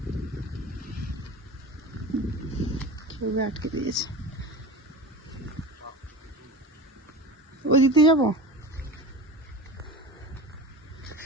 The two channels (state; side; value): normal; both; correlation 0.31